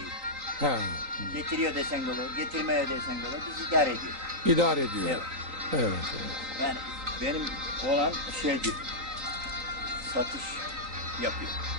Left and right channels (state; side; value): late; left; 3.9 ms